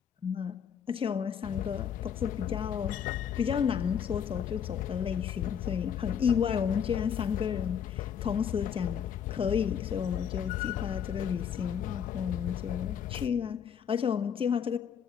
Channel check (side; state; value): right; quieter; 8.0 dB